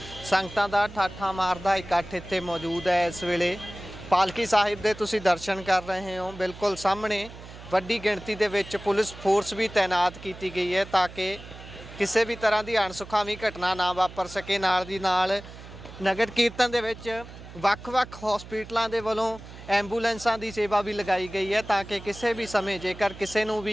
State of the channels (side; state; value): right; noise; hum, 16 dB below the sound